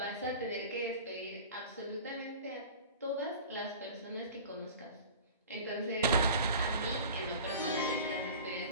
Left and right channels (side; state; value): both; inverted; correlation -0.39